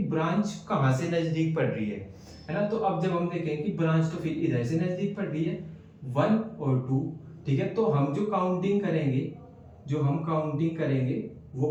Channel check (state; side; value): identical; both; correlation 1.00